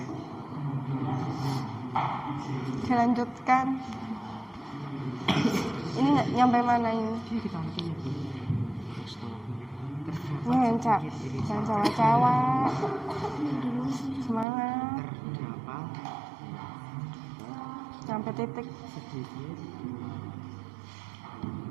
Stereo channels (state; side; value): drops out; left; at 14.5 s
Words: Dilanjutkan. Ini nggak nyampe mana ini? Ini hencak, jangan cewek-cewek. Semangat. Sampai titik.